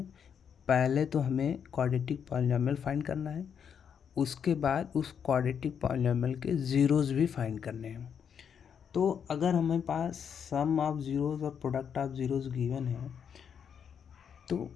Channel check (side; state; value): right; quieter; 7.6 dB